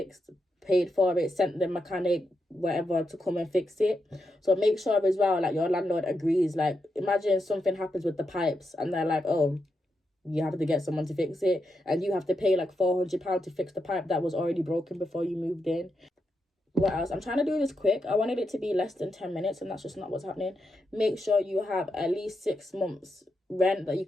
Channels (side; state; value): both; normal; correlation 0.85